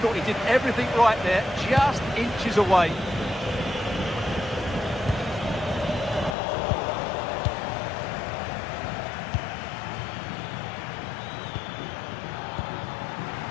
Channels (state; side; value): drops out; right; at 6.4 s